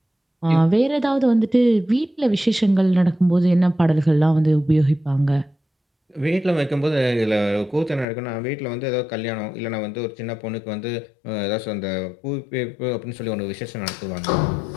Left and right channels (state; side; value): drops out; right; at 8.1 s